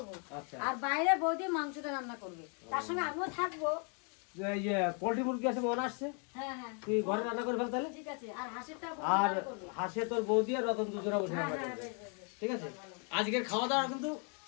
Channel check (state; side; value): quieter; right; 38.7 dB